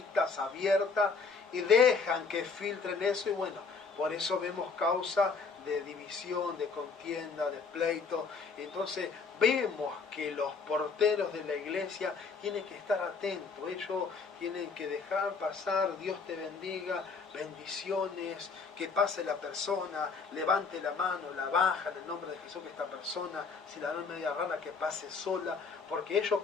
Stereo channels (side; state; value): right; quieter; 4.9 dB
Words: abiertas y dejan que filtren eso y bueno, por eso vemos causa de división, de contienda, de pleito. Entonces vemos que los porteros de la iglesia tienen que estar atentos, ellos tienen que dejar pasar, Dios te bendiga, bendiciones, que pase la persona, levante la mano, la baja en el nombre de Jesús, que esta persona, si la ven media rara, que pase sola, porque ellos